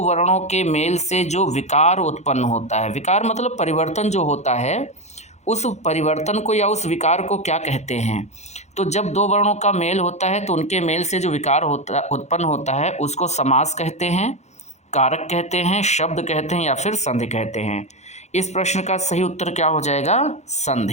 वर्णों के मेल से जो विकार उत्पन्न होता है, विकार मतलब परिवर्तन जो होता है, उस परिवर्तन को या उस विकार को क्या कहते हैं। तो जब दो वर्णों का मेल होता है तो उनके मेल से जो विकार उत्पन्न होता है उसको समास कहते हैं, कारक कहते हैं, शब्द कहते हैं या फिर संधि कहते हैं। इस प्रश्न का सही उत्तर क्या हो जाएगा?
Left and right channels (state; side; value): late; right; 0.33 ms